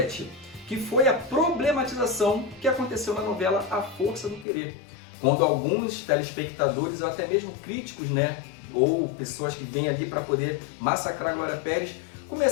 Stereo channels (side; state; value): right; drops out; at 4.5 s